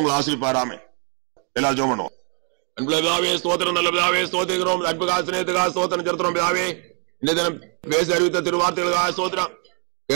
ஆசிரிப்பாராமே. எல்லாரும் ஜெபம் பண்ணுவோம். அன்புலகாவே ஸ்தோத்திரம், நல்லதாவே ஸ்தோத்திரிக்கிறோம். அன்புகா சிநேகத்துக்காக ஸ்தோத்திரம் செலுத்துறோம். பிதாவே, இந்த தினம் பேசி அறிவித்த திருவார்த்தைகளுக்காக ஸ்தோத்திரம்.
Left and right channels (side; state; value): left; quieter; 40.0 dB